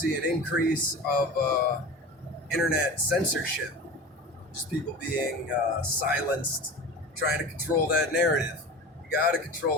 an increase of internet censorship. Just people being silenced, trying to control that narrative. You gotta control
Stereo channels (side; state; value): both; normal; correlation 0.33